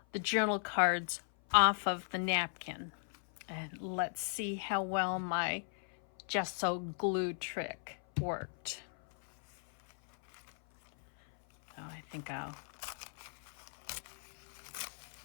the journal cards off of the napkin, and let's see how well my gesso glue trick worked. Oh, I think I'll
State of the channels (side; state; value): right; silent; 53 dB below the other